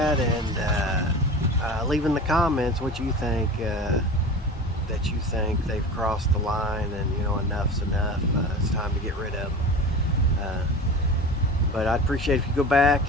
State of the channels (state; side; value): normal; both; correlation 0.33